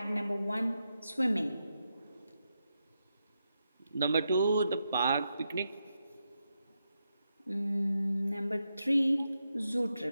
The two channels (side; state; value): both; inverted; correlation -0.85